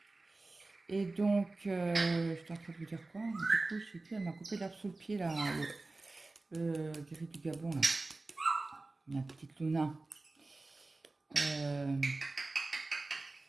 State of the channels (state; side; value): quieter; left; 3.2 dB